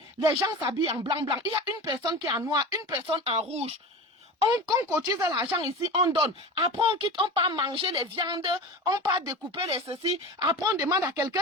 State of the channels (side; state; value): both; normal; correlation 0.30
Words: les gens s'habillent en blanc. Il y a une personne qui est en noir, une personne en rouge. On cotise l'argent ici, on donne. Après, on quitte, on part manger les viandes, on part découper les ceci. Après, on demande à